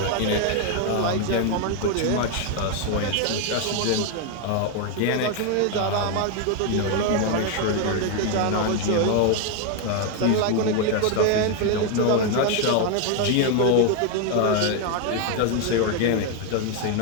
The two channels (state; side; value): different; both; correlation 0.01